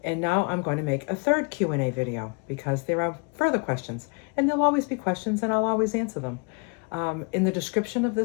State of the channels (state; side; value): quieter; right; 34.7 dB